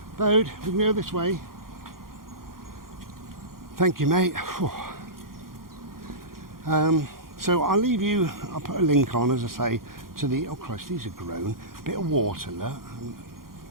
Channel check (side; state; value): left; late; 0.92 ms